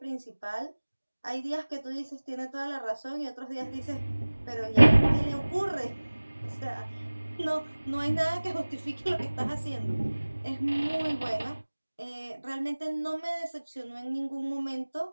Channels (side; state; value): both; inverted; correlation -1.00